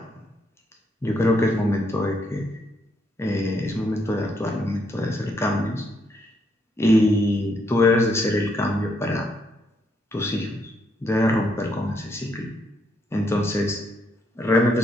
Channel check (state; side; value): normal; both; correlation 0.75